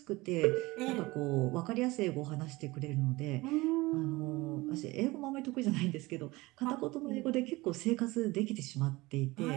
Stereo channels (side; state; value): left; quieter; 21.3 dB